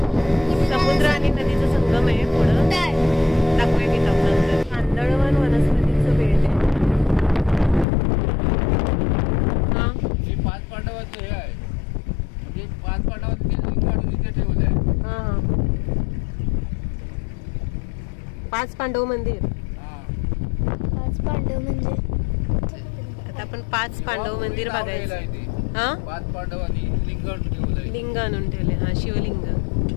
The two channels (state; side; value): drops out; right; at 7.9 s